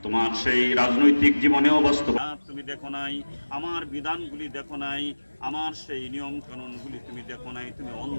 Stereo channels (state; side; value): inverted; both; correlation -1.00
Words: তোমার সেই রাজনৈতিক জীবনেও বাস্তবায়ন তুমি দেখো নাই, আমার বিধানগুলি দেখো নাই, আমার সেই নিয়ম কানুনগুলি তুমি দেখো নাই, তুমি অন্ধ